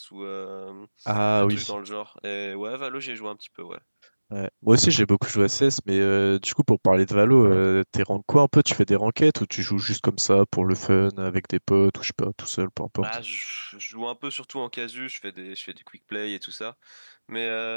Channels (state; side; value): inverted; both; correlation -1.00